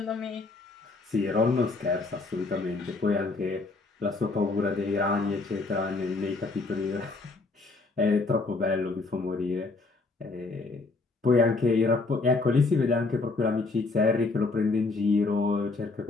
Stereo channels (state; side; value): quieter; right; 3.7 dB